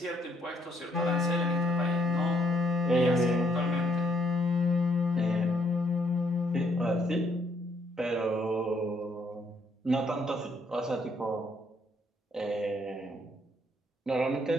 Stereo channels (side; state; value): both; normal; correlation 0.70